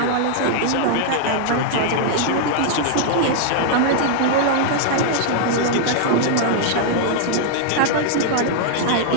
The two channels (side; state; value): both; different; correlation -0.01